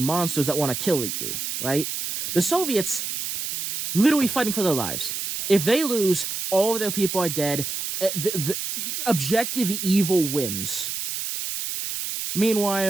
that want to kill you, right? The Soviets literally fighting for their lives. If they lose, all of their people are dead. The objective evil wins.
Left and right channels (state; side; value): noise; right; hiss, 4 dB below the sound